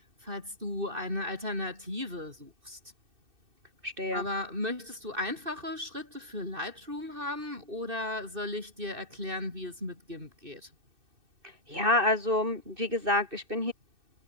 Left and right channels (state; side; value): late; left; 2.6 ms